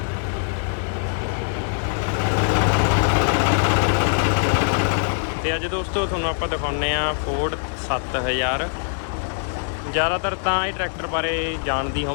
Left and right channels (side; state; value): right; silent; 64 dB below the other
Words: ਤੇ ਅੱਜ ਦੋਸਤੋ ਤੁਹਾਨੂੰ ਆਪਾਂ ਦਿਖਾਉਂਦੇ ਆ ਫੋਰਡ 7000। ਜ਼ਿਆਦਾਤਰ ਤਾਂ ਇਹ ਟਰੈਕਟਰ ਬਾਰੇ ਜਾਣਦੀ